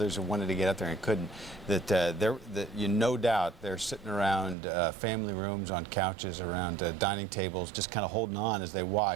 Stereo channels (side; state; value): left; drops out; at 4.5 s